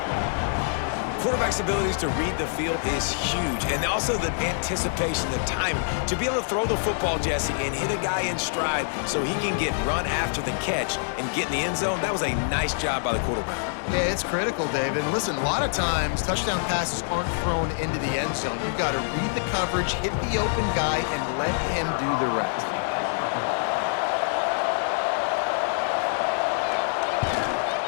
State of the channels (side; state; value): right; silent; digital silence